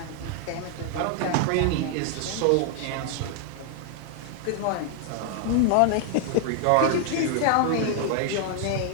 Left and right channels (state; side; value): different; both; correlation 0.00